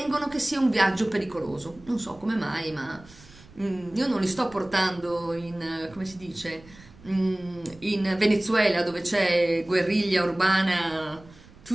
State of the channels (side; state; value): right; noise; rumble, 23 dB below the sound